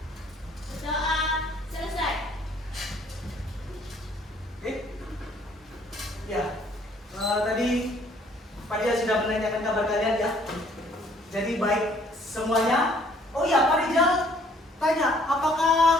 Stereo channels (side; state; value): both; normal; correlation 0.61